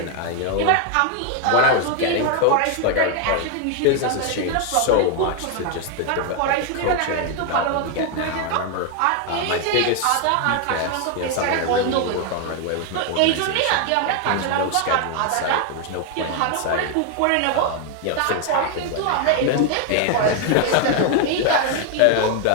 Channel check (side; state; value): both; different; correlation 0.01